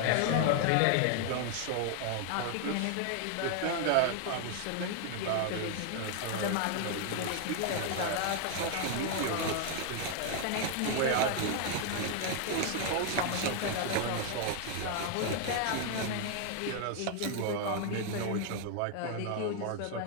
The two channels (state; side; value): different; both; correlation 0.00